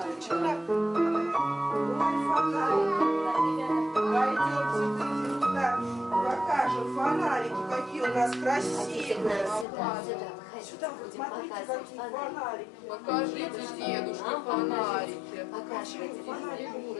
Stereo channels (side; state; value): right; drops out; at 9.7 s